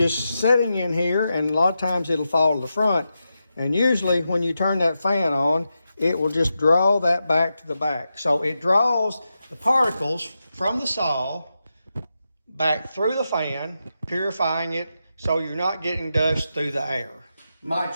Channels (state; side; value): inverted; both; correlation -0.88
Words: sitting in here, and a lot of times it'll fall to the front. And usually when you turn that fan on, it will just draw that back to the back. So it draws the particles from the saw back through the fan, purifying it so you're not getting dust through the air. My